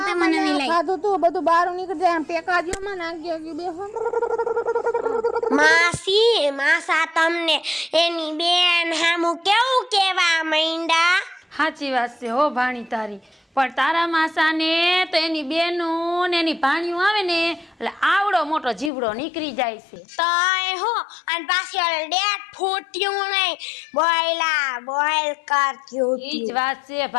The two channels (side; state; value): right; drops out; at 18.9 s